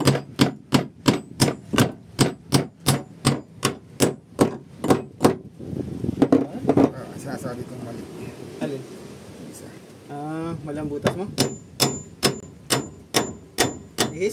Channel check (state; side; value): identical; both; correlation 1.00